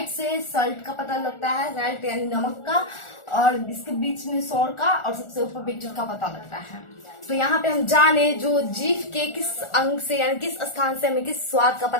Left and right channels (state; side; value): late; right; 1.4 ms